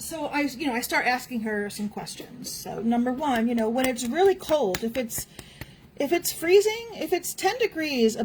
start asking her some questions. So number one, when it's really cold, if it's freezing, if it's 10 degrees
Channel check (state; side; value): identical; both; correlation 1.00